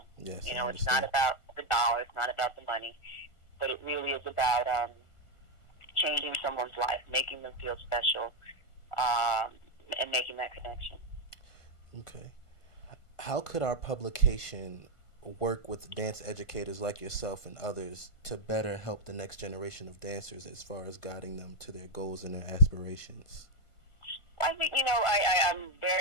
Yes, It's not about the dollar, it's not about the money, but it really is about changing someone's life, making them feel special, and making that connection. Okay. How could our publication work with dance educators like yourself and others to better help the next generation of dancers as far as guiding them to their goals and their aspirations? I think, I'm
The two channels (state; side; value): late; right; 1.5 ms